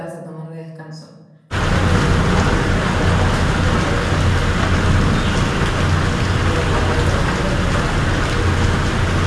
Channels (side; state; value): both; identical; correlation 1.00